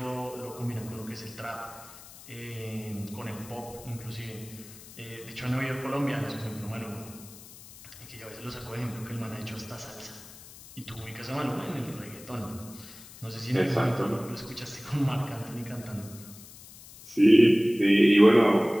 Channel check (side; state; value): left; noise; hiss, 18 dB below the sound